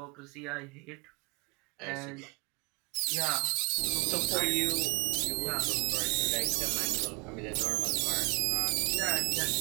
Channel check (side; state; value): left; quieter; 30.4 dB